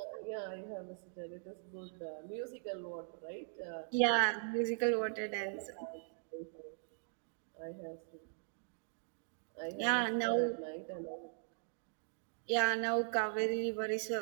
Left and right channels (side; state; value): left; silent; digital silence